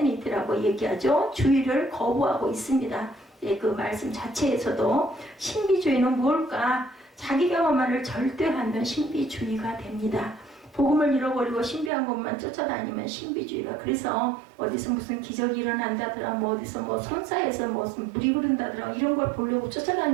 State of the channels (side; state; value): left; drops out; at 11.9 s